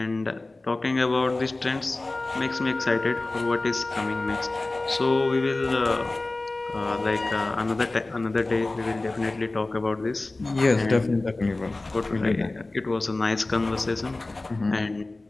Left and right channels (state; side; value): quieter; right; 3.0 dB